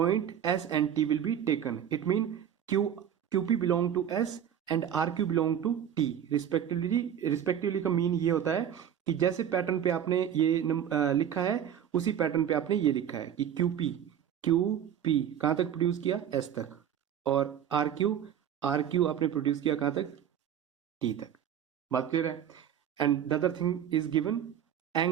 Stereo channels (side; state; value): left; quieter; 9.5 dB